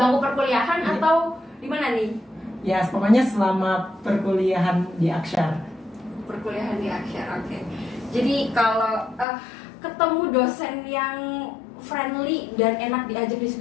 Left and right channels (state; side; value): drops out; right; at 9.2 s